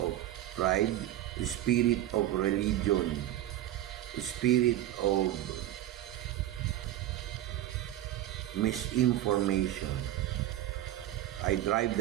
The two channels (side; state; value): left; quieter; 13.5 dB